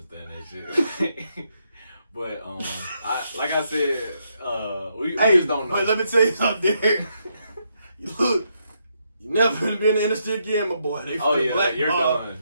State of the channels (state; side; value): inverted; both; correlation -0.78